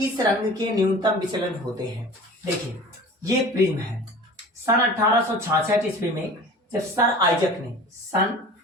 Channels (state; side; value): normal; both; correlation 0.40